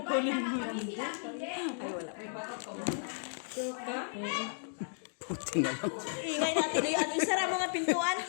mo. Ingay natin yung isara mo nga pintuan.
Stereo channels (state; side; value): silent; right; digital silence